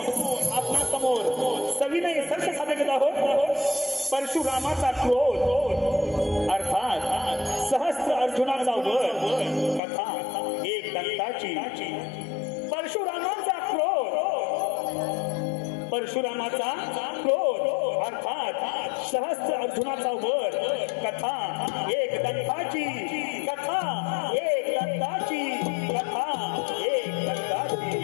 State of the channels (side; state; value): right; drops out; at 9.8 s